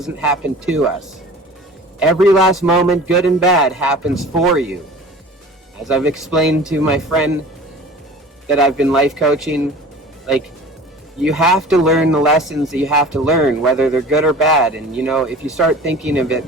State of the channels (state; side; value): normal; both; correlation 0.41